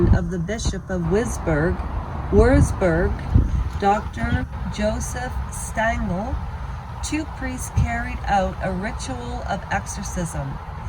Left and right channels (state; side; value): identical; both; correlation 1.00